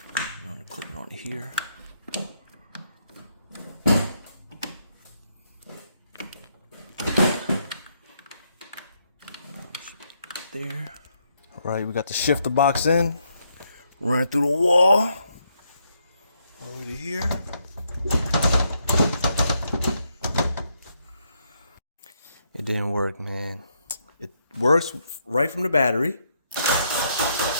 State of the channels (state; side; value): inverted; both; correlation -0.76